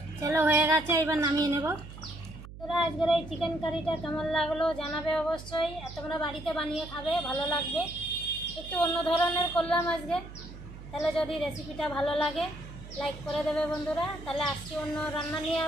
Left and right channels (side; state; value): right; noise; hum, 14 dB below the sound